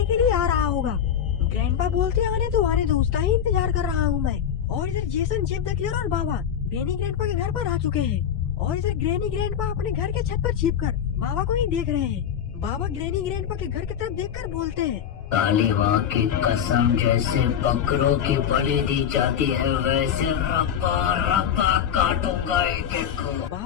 के लिए आ रहा होगा। ग्रैंडपा बोलते आने दो, उसका ही इंतजार कर रहा हूँ मैं। और इधर जेसन जेब द किलर और बाबा ग्रैनी ग्रैंडपा के घर पर आ चुके हैं, और इधर ग्रैनी ग्रैंडपा अपने घर के छत पर छिपकर बाबा को ही देख रहे हैं। बाबा ग्रैनी ग्रैंडपा के घर की तरफ देखकर बोलते हैं काली माँ की कसम, जैसे बकरों की बलि दी जाती है वैसे रपा रपा काटूंगा एक एक को।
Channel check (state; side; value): quieter; right; 8.9 dB